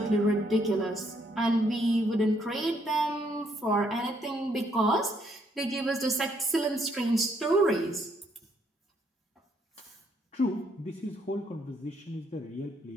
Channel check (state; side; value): normal; both; correlation 0.71